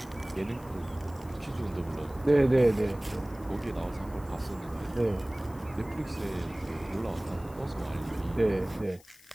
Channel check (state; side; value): noise; left; hiss, 24 dB below the sound